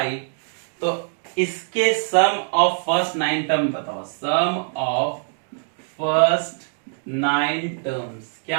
तो इसके सम ऑफ फर्स्ट 9 टर्म बताओ। सम ऑफ फर्स्ट 9 टर्म्स, क्या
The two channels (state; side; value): silent; left; 58 dB below the other